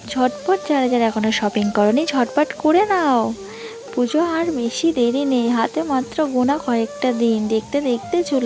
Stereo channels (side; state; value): both; identical; correlation 1.00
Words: ঝটপট যারা যারা এখনও শপিং করনি ঝটপট করে নাও, পুজো আর বেশি দেরি নেই, হাতে মাত্র গোনা কয়েকটা দিন, দেখতে দেখতে